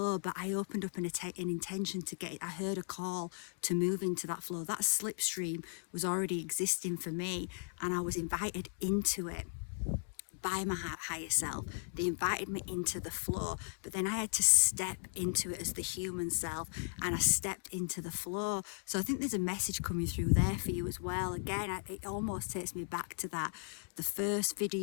but I opened up an intention to get it. I heard a call to move into that flow. That slipstream was already existing for me, and I was invited into it by my higher self. They invited me into the flow, but then I had to step into it as the human self, and I stepped into the flow. So I think there's a message coming through there for you as well. Again, it almost takes me back to that, the first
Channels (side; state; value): right; silent; 53 dB below the other